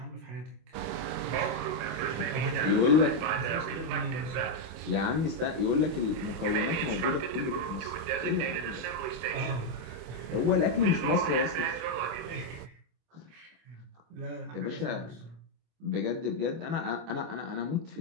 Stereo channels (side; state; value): left; late; 25 ms